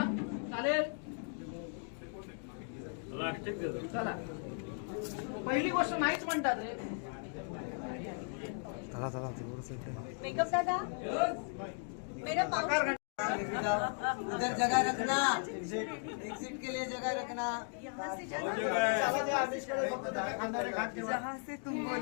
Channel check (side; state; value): right; silent; 53 dB below the other